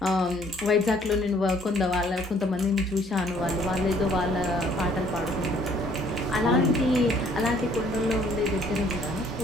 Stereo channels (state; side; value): normal; both; correlation 0.61